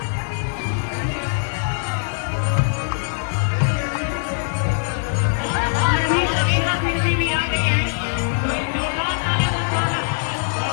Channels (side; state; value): right; silent; digital silence